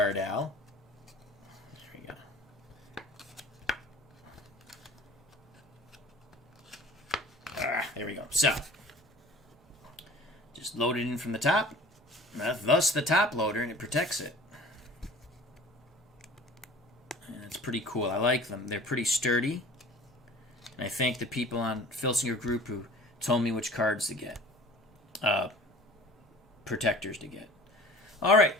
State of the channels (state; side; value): normal; both; correlation 0.45